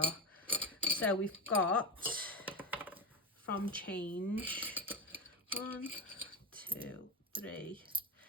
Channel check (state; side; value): normal; both; correlation 0.16